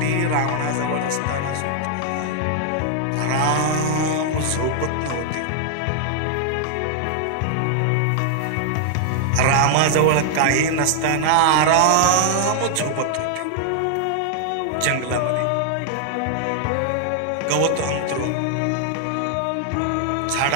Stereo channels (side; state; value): both; different; correlation 0.00